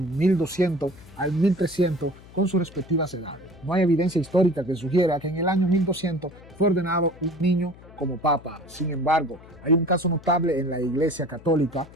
al 1300 con sus respectivas edades. No hay evidencia histórica que sugiera que en el año 1200 fue ordenado un niño como papa. Sin embargo, hay un caso notable en la Iglesia Católica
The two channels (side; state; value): left; noise; hum, 21 dB below the sound